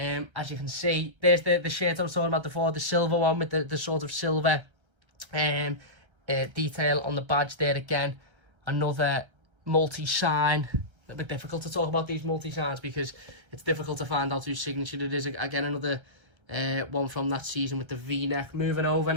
you can see, there's the shirt I was talking about before, the silver one with the sort of silver detail on the badge there. Again, another multi-sign. A bit difficult to talk about these multi-signs because it's difficult to find out whose signature it is. Again, another one from that season with the V-neck. Moving over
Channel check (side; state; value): left; late; 1.3 ms